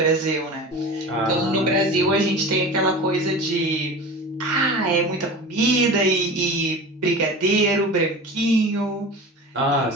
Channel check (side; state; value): both; normal; correlation 0.33